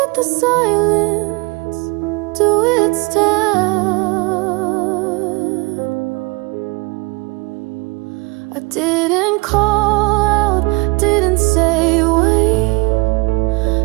the silence do its task. I didn't call out, didn't say wait,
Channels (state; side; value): quieter; left; 26.8 dB